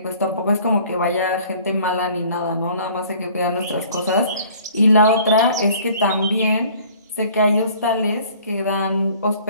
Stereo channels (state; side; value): inverted; both; correlation -0.52